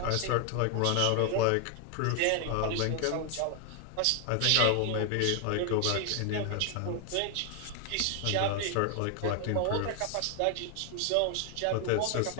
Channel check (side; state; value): both; different; correlation 0.00